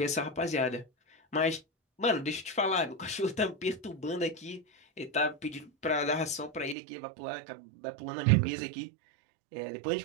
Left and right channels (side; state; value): left; drops out; at 6.8 s